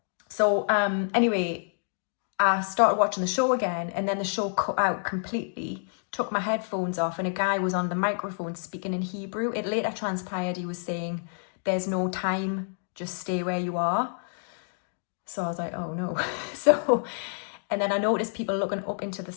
So anyway, I started watching the show again, and then the show cut out completely, took my headphones off, and a guy was on the microphone speaking in Hebrew. It later transpired he was saying, there's no time, just stay where you are. So I was like, oh no. And then I noticed people looking up into the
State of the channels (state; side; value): silent; right; digital silence